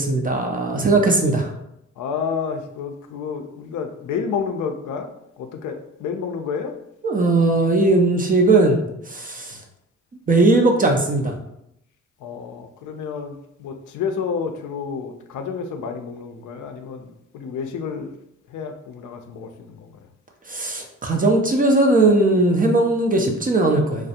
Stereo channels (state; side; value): normal; both; correlation 0.37